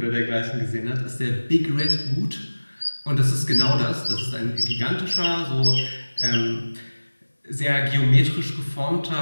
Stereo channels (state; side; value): inverted; both; correlation -1.00